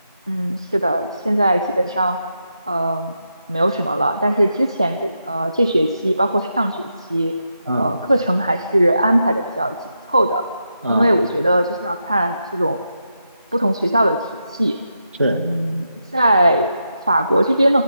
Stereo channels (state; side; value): inverted; both; correlation -0.85